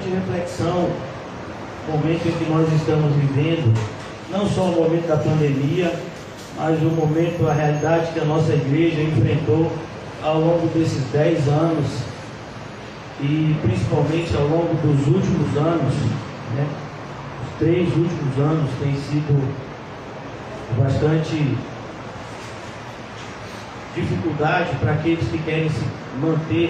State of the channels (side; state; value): both; identical; correlation 1.00